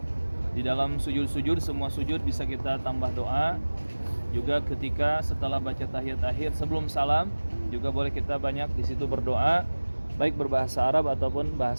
Di dalam sujud-sujud, semua sujud bisa kita tambah doa. Juga ketika setelah baca tahiyat akhir sebelum salam, juga boleh kita banyak di situ berdoa, baik berbahasa Arab ataupun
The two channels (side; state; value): both; inverted; correlation -1.00